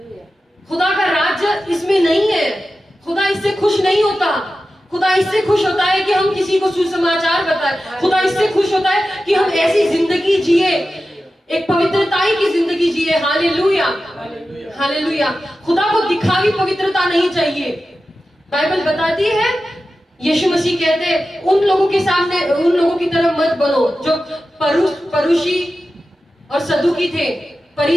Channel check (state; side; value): normal; both; correlation 0.93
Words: खुदा का राज्य इसमें नहीं है। खुदा इससे खुश नहीं होता। खुदा इससे खुश होता है कि हम किसी को सुसमाचार बताएं। खुदा इससे खुश होता है कि हम ऐसी जिंदगी जिए, एक पवित्रताई की जिंदगी जिए। Hallelujah, hallelujah. खुदा को दिखावी पवित्रता नहीं चाहिए। बाइबल बताती है, यीशु मसीह कहते उन लोगों के सामने, उन लोगों की तरह मत बनो जो परुषी और सदुकी थे।